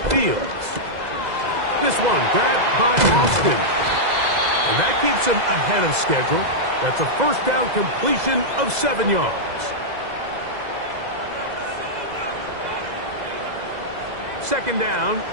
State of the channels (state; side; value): late; left; 2.0 ms